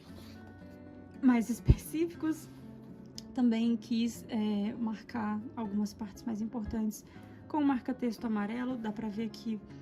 mais específicos. Também quis marcar algumas partes mais importantes com o marca-texto amarelo. Dá pra ver que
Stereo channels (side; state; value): both; identical; correlation 1.00